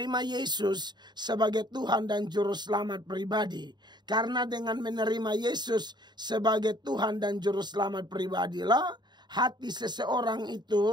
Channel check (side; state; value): left; late; 0.21 ms